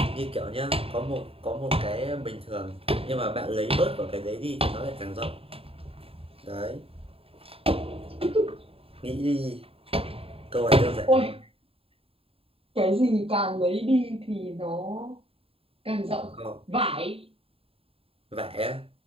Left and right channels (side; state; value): left; late; 0.27 ms